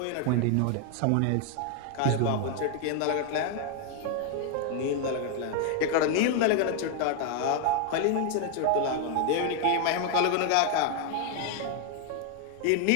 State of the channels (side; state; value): both; different; correlation 0.00